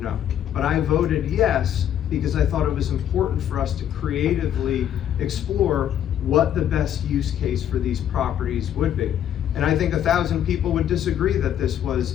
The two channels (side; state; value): right; quieter; 10.3 dB